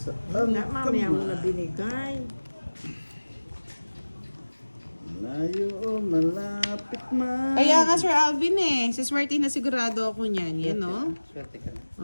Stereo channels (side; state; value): both; inverted; correlation -1.00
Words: Na, mamaya mo na binigay. Malayo o malapit man. Kaya nga, Sir Alvin eh. Siswertihin na sigurado ako niyan. Yan, no? Swerte ka na.